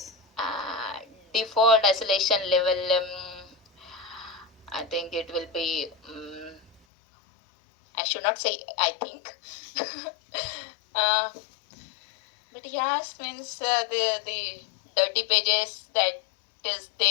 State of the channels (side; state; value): right; drops out; at 6.8 s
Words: uh, Default isolation level, I think it will be, I should not say I think. uh, but yes, means the dirty pages that is